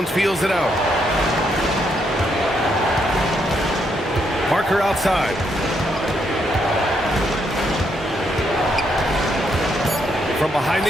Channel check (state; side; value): normal; both; correlation 0.76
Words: feels it out. Parker outside. From behind